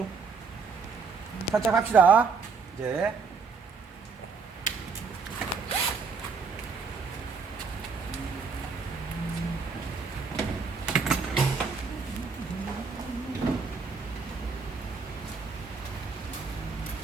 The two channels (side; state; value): left; quieter; 5.1 dB